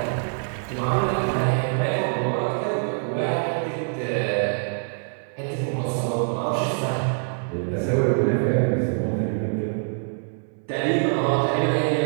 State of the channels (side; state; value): left; silent; 62 dB below the other